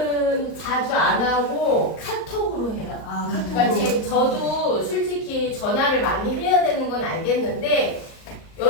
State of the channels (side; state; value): right; late; 38 ms